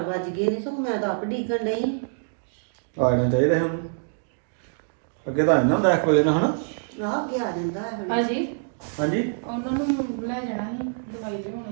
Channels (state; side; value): silent; left; digital silence